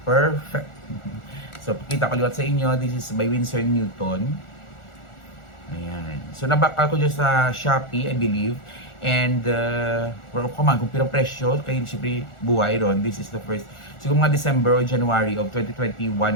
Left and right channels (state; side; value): late; right; 1.4 ms